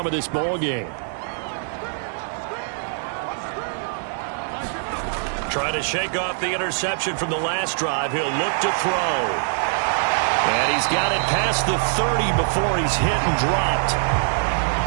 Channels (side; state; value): left; silent; digital silence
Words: of this ball game. Trying to shake off the interception from the last drive. He'll look to throw. And he's got it past the 30 before he's hit and dropped.